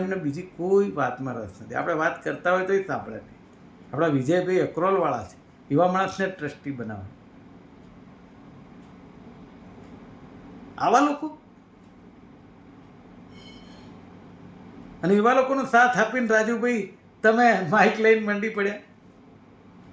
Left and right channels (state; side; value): identical; both; correlation 1.00